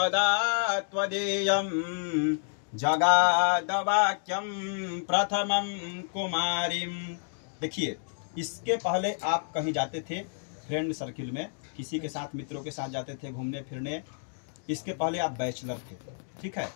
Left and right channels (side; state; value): right; silent; digital silence